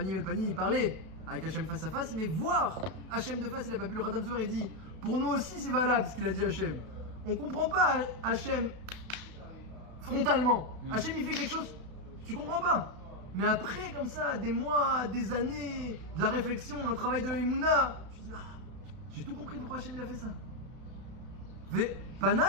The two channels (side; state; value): left; late; 32 ms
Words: el Panim, il parlait avec Hachem face à face, mais voir Hachem de face, il n'a pas pu. Le Khatam Sofer, il dit, pour nous aussi c'est valable ce qu'il a dit Hachem. On comprend pas Hachem frontalement. Hachem il fait quelque chose, tu comprends pas. Mais après, comme ça, des mois, des années, de la réflexion, un travail de Emouna, tu dis, j'ai tout compris pourquoi Hachem il a fait ça. Pana,